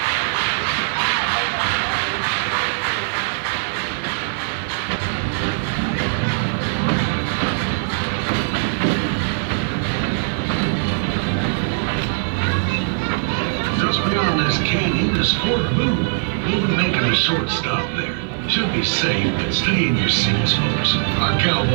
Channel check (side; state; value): left; silent; 65 dB below the other